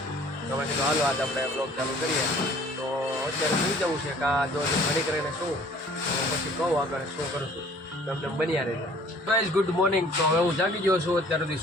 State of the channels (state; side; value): normal; both; correlation 0.53